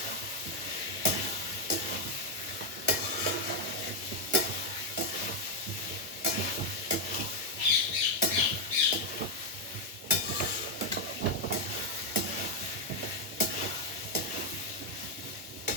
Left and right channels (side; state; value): both; normal; correlation 0.03